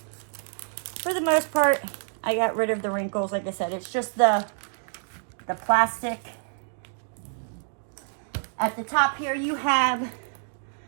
for the most part, I got rid of the wrinkles. Like I said, it's just the plastic. At the top here, you have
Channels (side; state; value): left; silent; digital silence